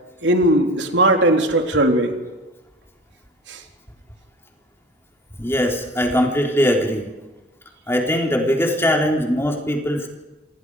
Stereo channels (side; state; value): both; normal; correlation 0.45